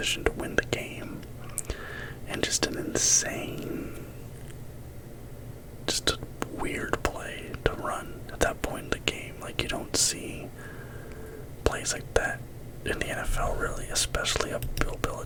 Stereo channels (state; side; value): identical; both; correlation 1.00